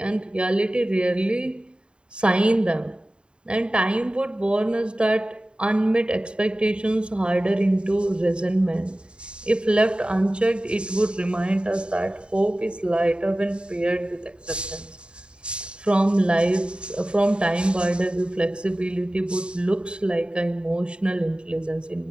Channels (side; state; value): left; late; 0.052 ms